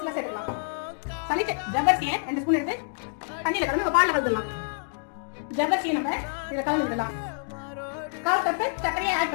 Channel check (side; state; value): right; silent; digital silence